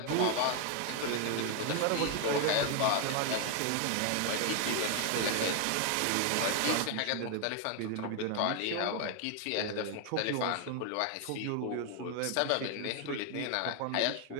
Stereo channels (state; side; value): different; both; correlation 0.01